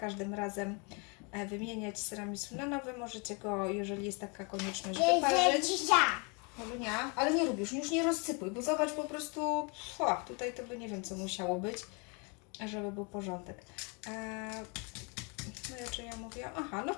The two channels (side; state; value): right; quieter; 33.0 dB